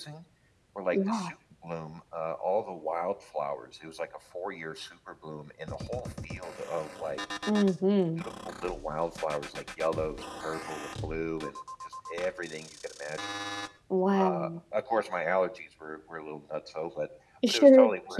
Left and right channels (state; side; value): identical; both; correlation 1.00